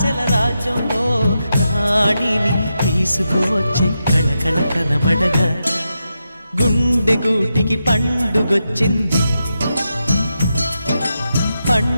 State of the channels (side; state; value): both; inverted; correlation -0.87